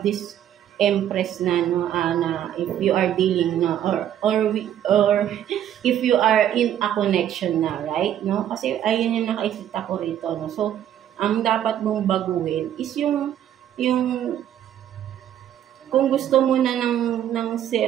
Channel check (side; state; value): left; quieter; 10.7 dB